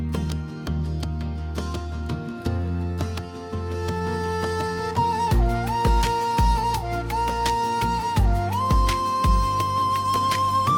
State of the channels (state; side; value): identical; both; correlation 1.00